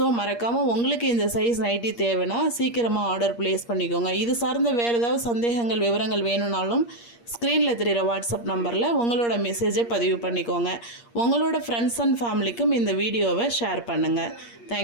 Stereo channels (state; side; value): late; right; 8.5 ms